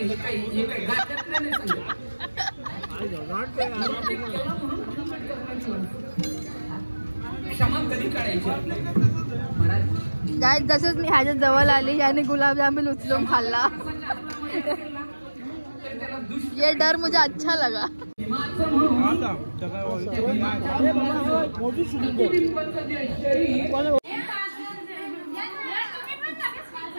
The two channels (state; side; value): inverted; both; correlation -1.00